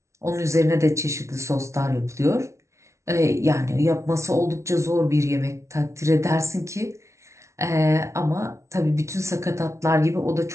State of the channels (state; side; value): late; left; 0.14 ms